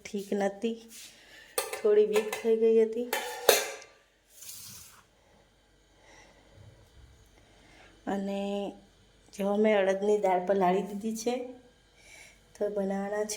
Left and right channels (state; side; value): identical; both; correlation 1.00